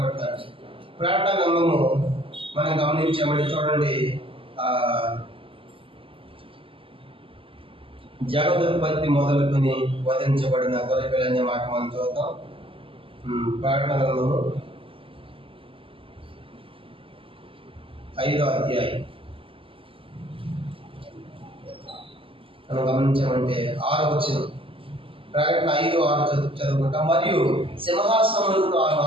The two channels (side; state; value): left; late; 0.26 ms